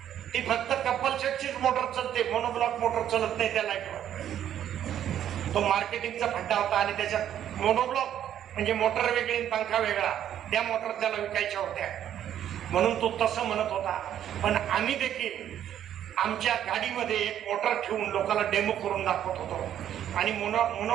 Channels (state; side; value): quieter; left; 10.6 dB